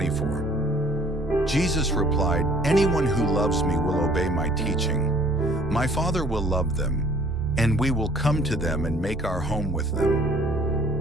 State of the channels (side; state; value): both; normal; correlation 0.55